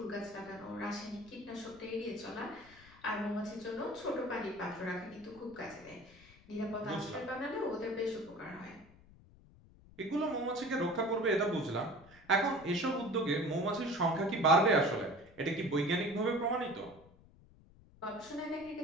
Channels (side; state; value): left; noise; rumble, 24 dB below the sound